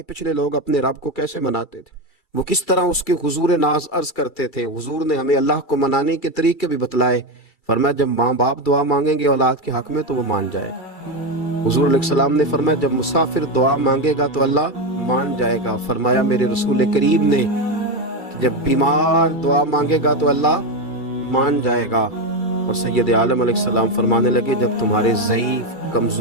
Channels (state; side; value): late; right; 2.3 ms